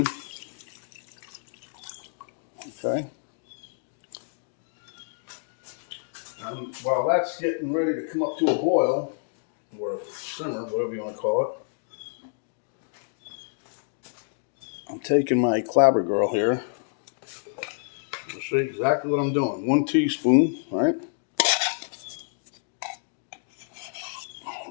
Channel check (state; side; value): silent; right; digital silence